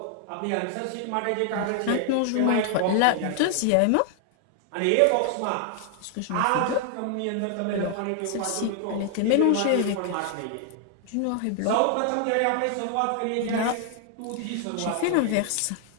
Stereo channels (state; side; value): different; both; correlation 0.00